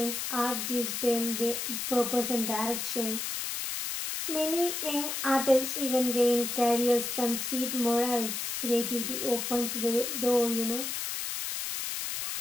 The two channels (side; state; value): left; noise; hiss, 3 dB below the sound